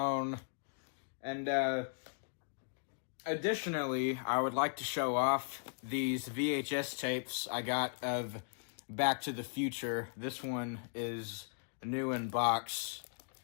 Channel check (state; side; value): silent; right; digital silence